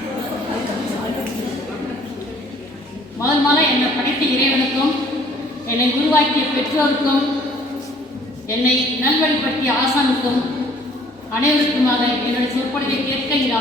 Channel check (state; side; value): normal; both; correlation 0.57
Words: முதல்ல என்னை படைத்த இறைவனுக்கும் என்னை உருவாக்கிய பெற்றோருக்கும் என்னை நல்வழிப்படுத்திய ஆசானுக்கும் அனைவருக்குமாக என்னுடைய சொற்பொழிவை கேட்க இங்கு